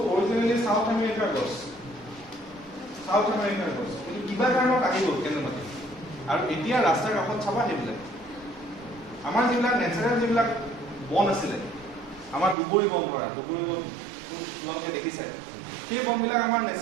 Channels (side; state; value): left; drops out; at 12.6 s